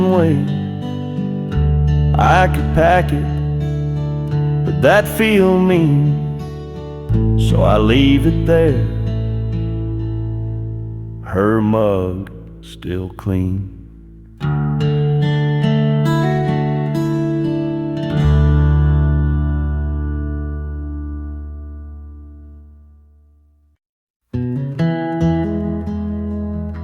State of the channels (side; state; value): both; identical; correlation 1.00